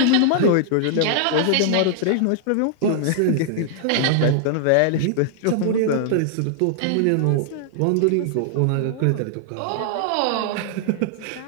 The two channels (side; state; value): both; different; correlation -0.01